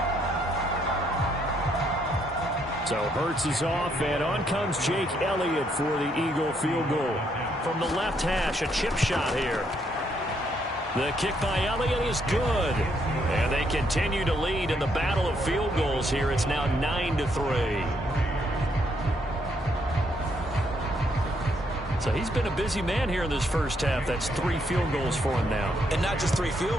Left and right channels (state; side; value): normal; both; correlation 0.73